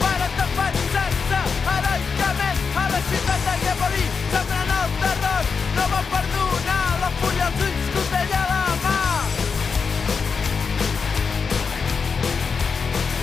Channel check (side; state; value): right; quieter; 5.5 dB